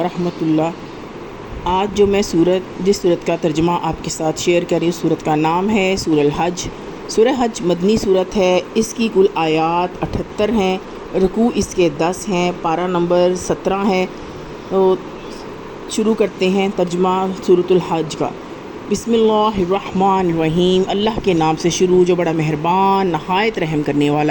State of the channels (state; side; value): identical; both; correlation 1.00